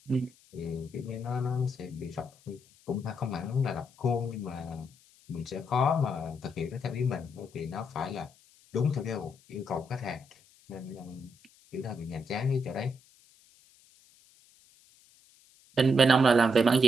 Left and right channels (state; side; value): noise; left; hiss, 28 dB below the sound